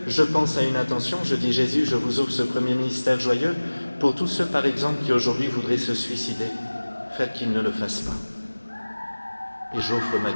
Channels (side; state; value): both; inverted; correlation -1.00